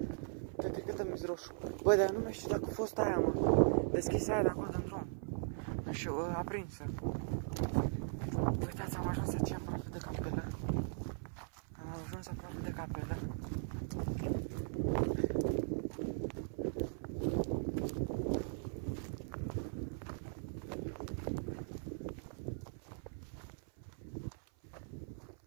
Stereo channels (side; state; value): left; silent; 52 dB below the other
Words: Cred că dă-mi roșu. Băi, dar eu nu mai știu dacă a fost aia, mă. Deschisă aia de acolo din drum. Nu știu, aprinsă. Uitați, am ajuns aici aproape de capelă. Am ajuns aproape de capelă.